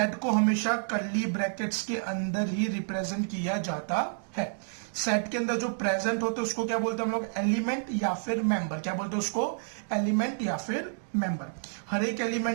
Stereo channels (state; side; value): silent; left; digital silence